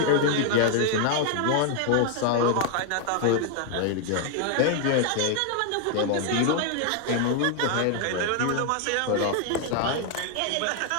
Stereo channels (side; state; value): both; different; correlation 0.00